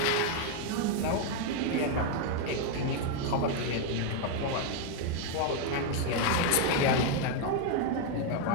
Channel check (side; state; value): both; different; correlation 0.01